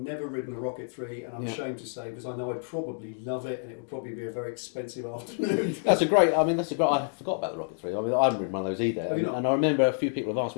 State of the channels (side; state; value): right; silent; digital silence